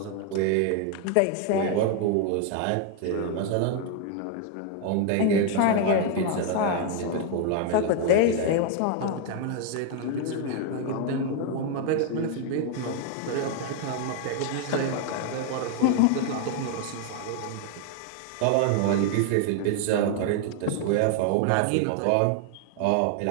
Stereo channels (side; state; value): both; different; correlation 0.00